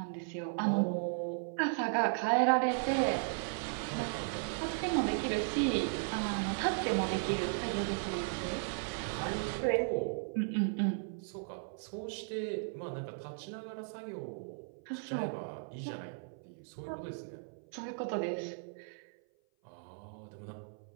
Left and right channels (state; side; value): silent; left; 54 dB below the other